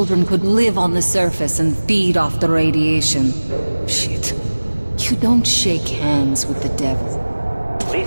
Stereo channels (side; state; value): both; inverted; correlation -1.00